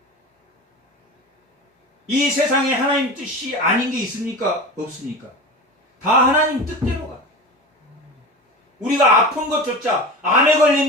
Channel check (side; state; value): both; normal; correlation 0.30